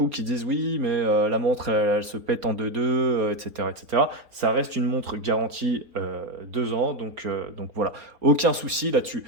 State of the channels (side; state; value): left; late; 4.1 ms